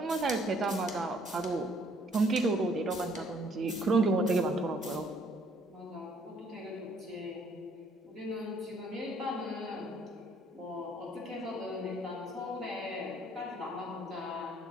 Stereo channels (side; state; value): both; normal; correlation 0.64